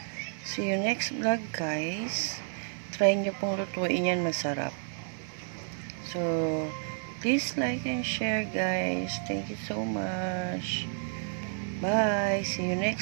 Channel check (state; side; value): silent; left; digital silence